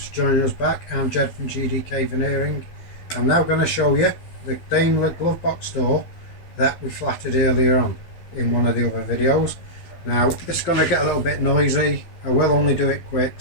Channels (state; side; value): late; right; 12 ms